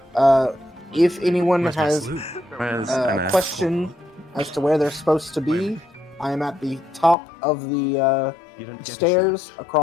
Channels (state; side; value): drops out; right; at 7.2 s